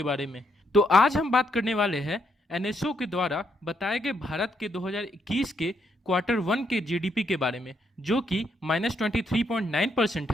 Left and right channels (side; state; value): both; normal; correlation 0.76